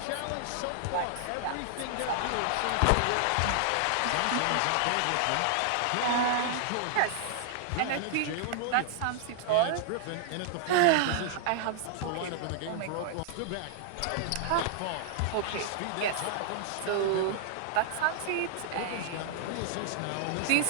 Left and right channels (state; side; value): different; both; correlation -0.01